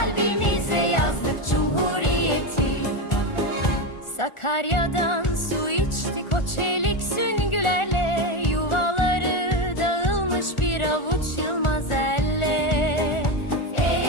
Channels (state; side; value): late; right; 1.4 ms